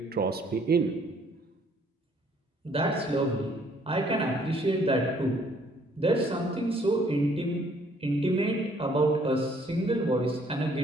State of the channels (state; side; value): normal; both; correlation 0.63